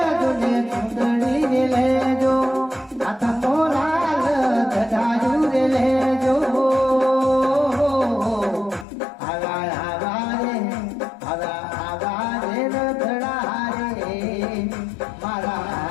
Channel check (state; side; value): drops out; right; at 8.8 s